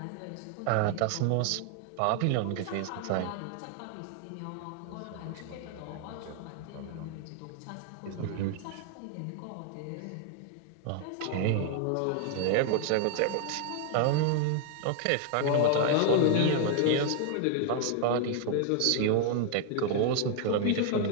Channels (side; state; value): both; different; correlation 0.00